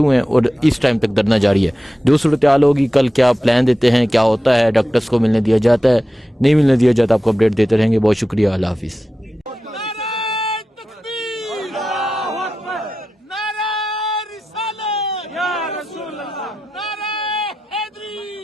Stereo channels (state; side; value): normal; both; correlation 0.93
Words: हुए हैं और इस टाइम तक धरना जारी है। जो सूरत हाल होगी, कल क्या प्लान देते हैं, क्या होता है, डॉक्टर्स को मिलने दिया जाता है, नहीं मिलने दिया जाता, आपको अपडेट देते रहेंगे। बहुत शुक्रिया, अल्लाह हाफिज़।